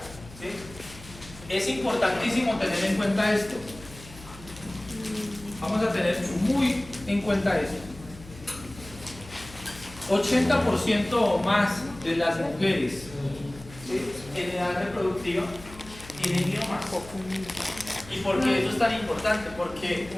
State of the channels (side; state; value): left; noise; hum, 18 dB below the sound